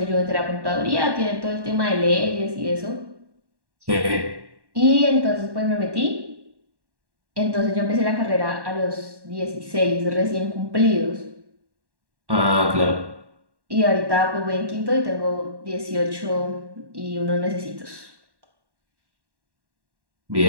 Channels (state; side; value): late; left; 1.1 ms